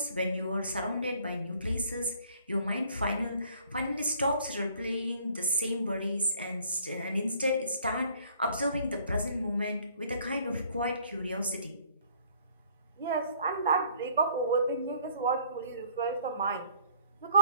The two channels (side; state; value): both; inverted; correlation -0.60